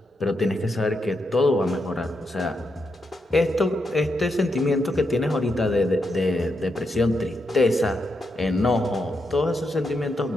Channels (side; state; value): both; normal; correlation 0.83